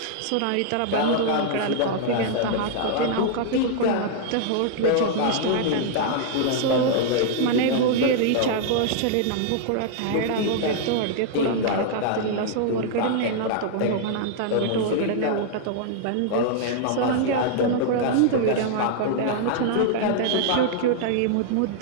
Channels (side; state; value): both; different; correlation -0.01